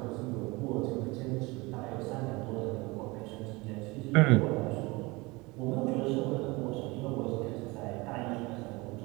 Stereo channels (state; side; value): quieter; left; 24.0 dB